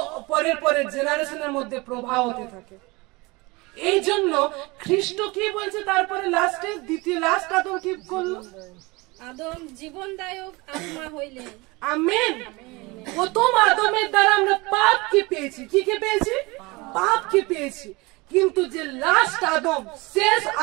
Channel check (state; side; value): quieter; left; 24.4 dB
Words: পরের জেনারেশনের মধ্যে প্রভাব হতে থাকে। এই জন্য খ্রিস্ট কি বলছে তারপরে লাস্টে, লাস্ট আদম কি করলো? আদম জীবনদায়ক আত্মা হইলেন। আমেন। প্রথম আদমের দ্বারা আমরা পাপ কি পেয়েছি? কি পেয়েছি? পাপ কি পেয়েছি। কিন্তু যে লাস্ট আদম, শেষ